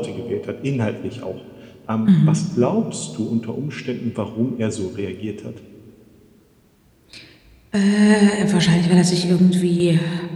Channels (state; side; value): identical; both; correlation 1.00